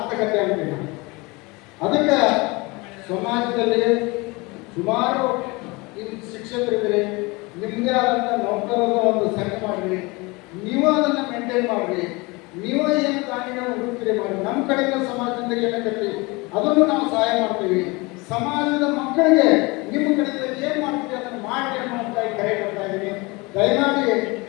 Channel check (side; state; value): right; quieter; 25.3 dB